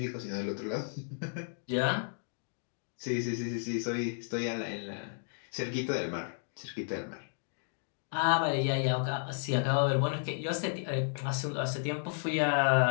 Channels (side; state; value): right; silent; digital silence